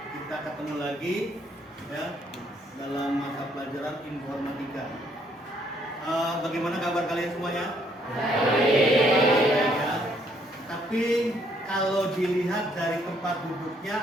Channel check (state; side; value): normal; both; correlation 0.68